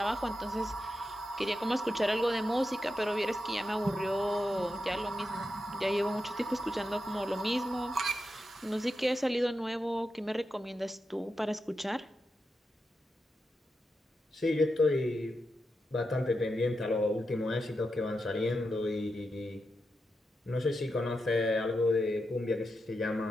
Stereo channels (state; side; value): normal; both; correlation 0.88